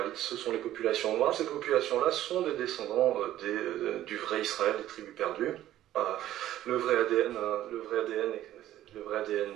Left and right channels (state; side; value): quieter; left; 13.2 dB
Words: ce sont les populations noires. Ces populations-là sont des descendants du vrai Israël, des tribus perdues. Le vrai ADN